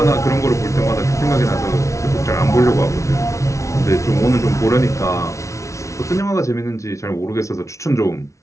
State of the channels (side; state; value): right; late; 0.14 ms